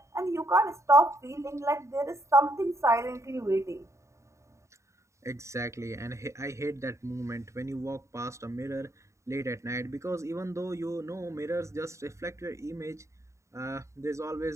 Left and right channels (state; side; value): late; left; 0.14 ms